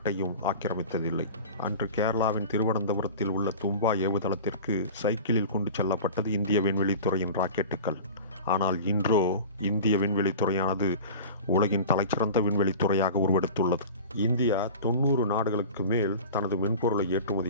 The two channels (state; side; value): inverted; both; correlation -0.36